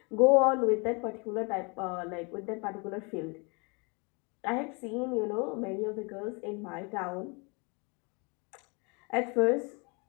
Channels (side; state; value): right; quieter; 31.8 dB